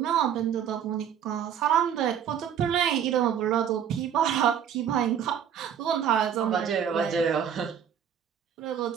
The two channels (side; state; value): left; quieter; 8.8 dB